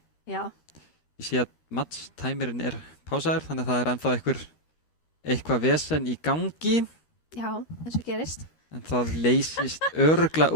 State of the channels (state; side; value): late; right; 13 ms